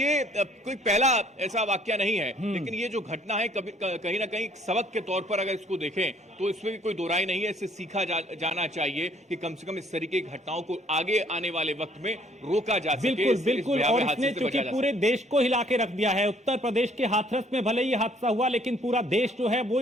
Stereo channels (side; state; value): both; normal; correlation 0.62